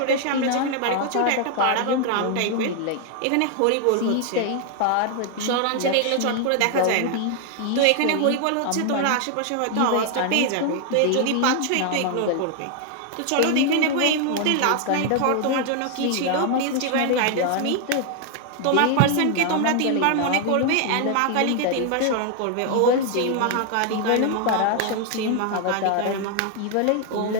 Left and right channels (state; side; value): different; both; correlation 0.00